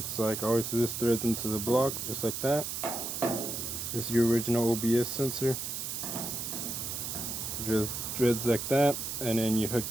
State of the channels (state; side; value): noise; right; hiss, 4 dB below the sound